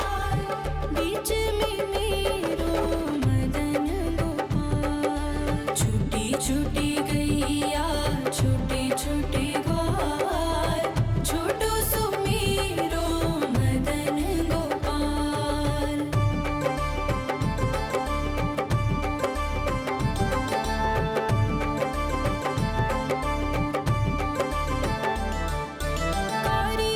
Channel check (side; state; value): both; identical; correlation 1.00